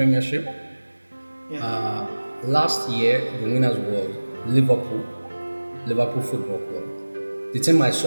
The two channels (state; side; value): inverted; both; correlation -1.00